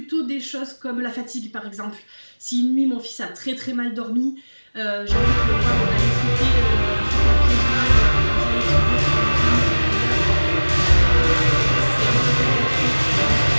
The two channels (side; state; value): both; inverted; correlation -1.00